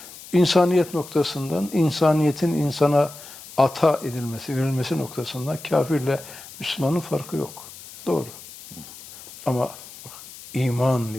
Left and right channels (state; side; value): noise; left; hiss, 17 dB below the sound